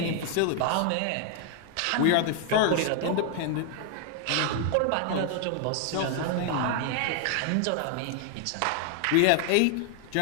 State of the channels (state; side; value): different; both; correlation 0.00